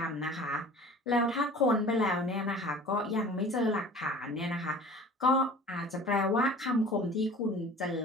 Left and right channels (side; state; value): both; normal; correlation 0.43